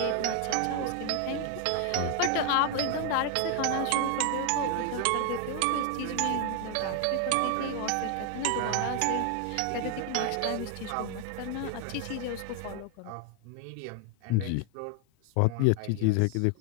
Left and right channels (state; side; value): different; both; correlation 0.00